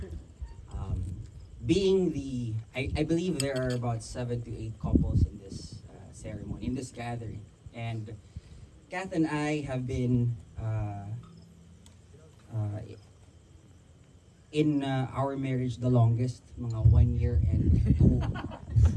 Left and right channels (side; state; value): both; identical; correlation 1.00